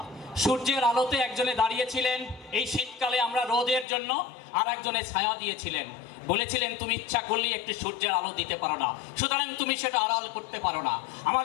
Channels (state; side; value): drops out; right; at 3.9 s